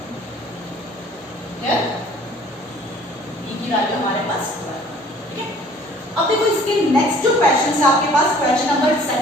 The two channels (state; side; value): normal; both; correlation 0.53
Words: Clear, b की वैल्यू हमारे पास 12. ठीक है, अब देखो इसके नेक्स्ट जो क्वेश्चन है आपके पास, question number